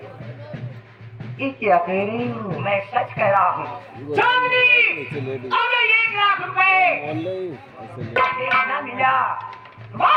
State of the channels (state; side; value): identical; both; correlation 1.00